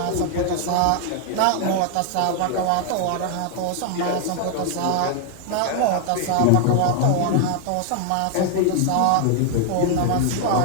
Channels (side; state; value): both; different; correlation 0.00